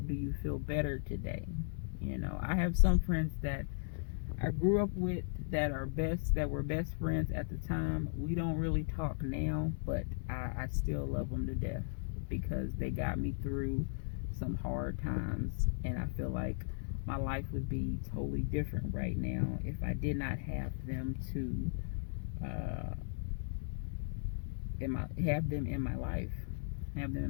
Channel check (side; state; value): right; silent; digital silence